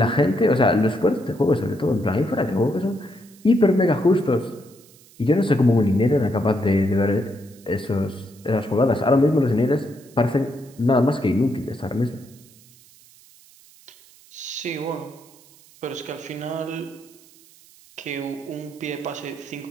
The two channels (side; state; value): right; noise; hiss, 26 dB below the sound